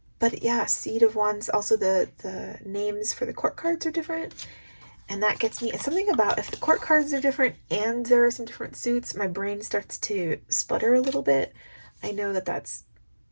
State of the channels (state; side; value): inverted; both; correlation -1.00